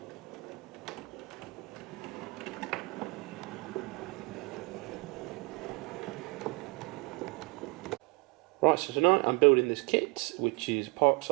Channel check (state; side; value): quieter; left; 28.9 dB